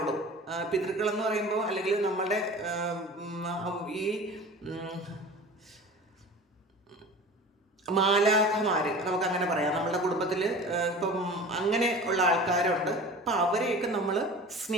പിതൃക്കളെന്ന് പറയുമ്പോൾ, അല്ലെങ്കിൽ നമ്മളുടെ ഈ മാലാഖമാര് നമുക്കങ്ങനെ പറയാം. നമ്മളുടെ കുടുംബത്തിൽ ഇപ്പം അങ്ങനെ ഉള്ള ആൾക്കാരുണ്ട്. അപ്പം അവരെയൊക്കെ നമ്മൾ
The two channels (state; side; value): normal; both; correlation 0.38